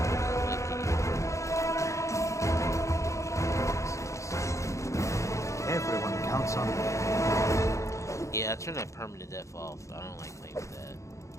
Everyone counts on me. Yeah, I turned that permanent death off. I don't like playing with that.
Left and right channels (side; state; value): right; late; 0.15 ms